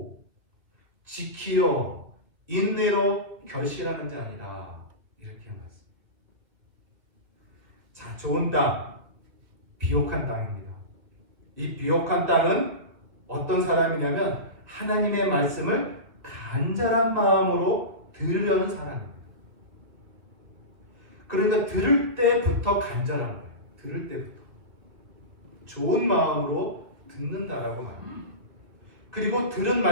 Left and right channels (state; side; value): late; left; 2.0 ms